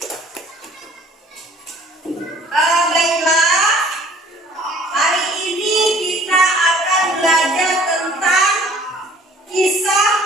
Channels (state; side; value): normal; both; correlation 0.54